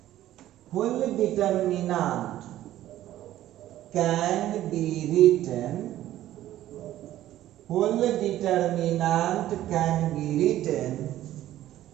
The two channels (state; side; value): quieter; left; 13.6 dB